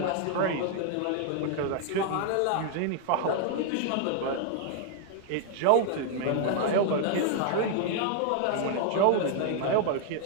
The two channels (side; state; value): both; different; correlation 0.00